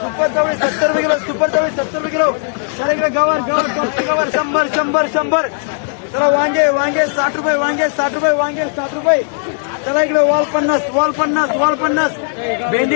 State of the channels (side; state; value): right; silent; 67 dB below the other